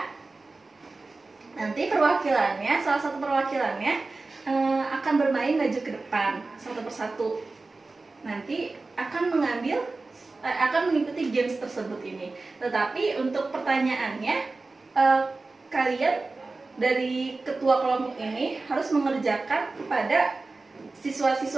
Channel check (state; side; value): quieter; left; 3.5 dB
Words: Nanti perwakilannya, salah satu perwakilannya akan bermain maju ke depan satu persatu. Nanti akan mengikuti games tersebut ini. Tetapi untuk pertanyaannya, kalian dari ketua kelompok ini harus mengerjakan kepada